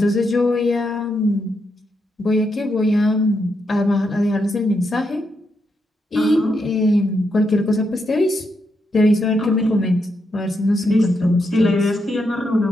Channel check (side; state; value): both; normal; correlation 0.82